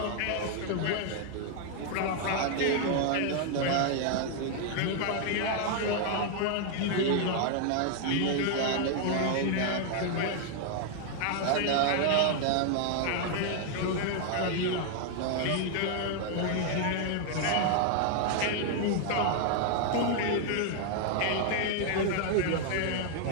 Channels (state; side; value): different; both; correlation 0.00